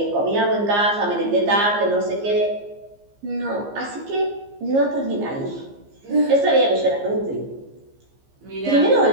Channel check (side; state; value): left; late; 15 ms